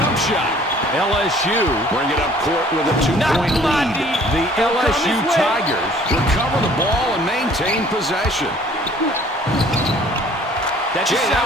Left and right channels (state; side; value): normal; both; correlation 0.54